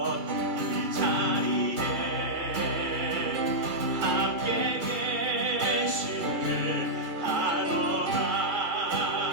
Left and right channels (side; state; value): left; late; 2.3 ms